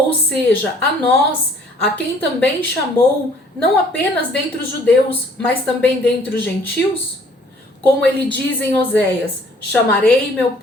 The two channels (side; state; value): both; normal; correlation 0.58